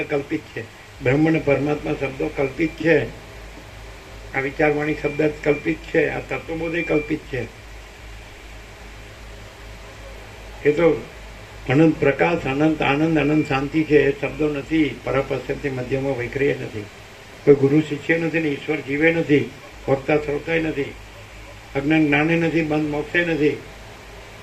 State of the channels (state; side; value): identical; both; correlation 1.00